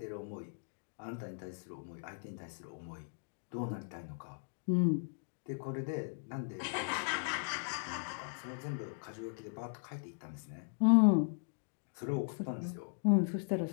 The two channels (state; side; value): silent; right; digital silence